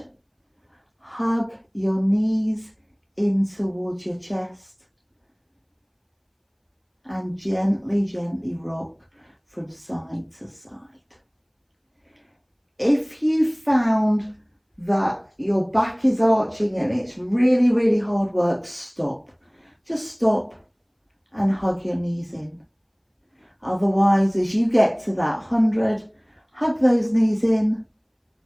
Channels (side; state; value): both; identical; correlation 1.00